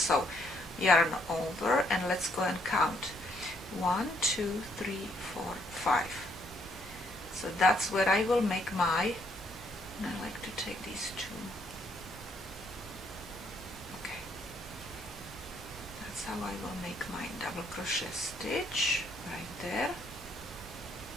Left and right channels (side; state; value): both; normal; correlation 0.70